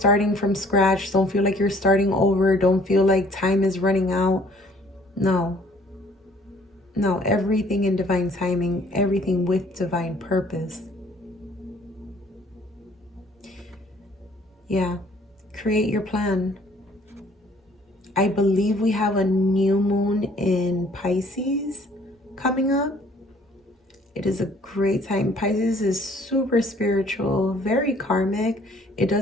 from scratch. Don't feel like you're starting over. Don't feel like time is running out. No, everything in divine timing, everything with divine purpose. Yeah, create your plan. I believe we have a new moon in Pisces coming up. It is a great time. Pisces is super spiritual, very karmic. It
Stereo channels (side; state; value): both; normal; correlation 0.58